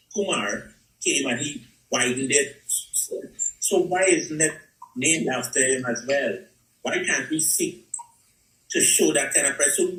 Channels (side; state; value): both; identical; correlation 1.00